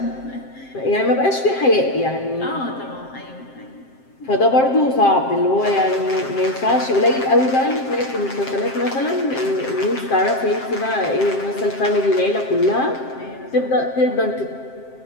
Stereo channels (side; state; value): right; late; 7.6 ms